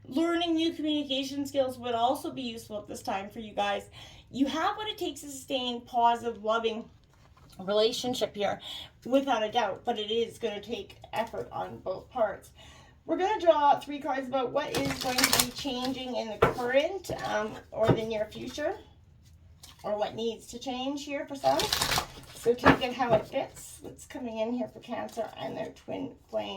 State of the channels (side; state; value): both; identical; correlation 1.00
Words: Learning new communication skills would also be useful at this time for you guys. You have what it takes to sustain positive, loving relationship here, without a doubt, but it is going to take effort on both parts. We're going to draw 3 cards about what is going to be changing in the current or the near future, or what needs to change here for some. So take it how it fits. What's coming in here for Cancer and their twin